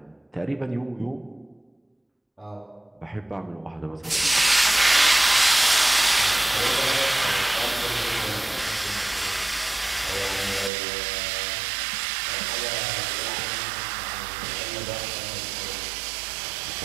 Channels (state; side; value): drops out; left; at 10.7 s